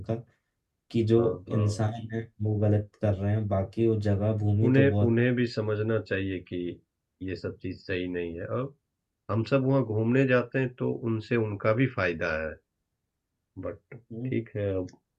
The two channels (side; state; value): both; identical; correlation 1.00